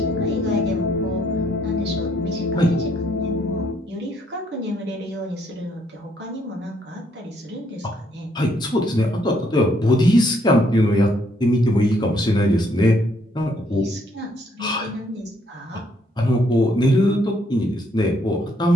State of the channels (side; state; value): both; normal; correlation 0.69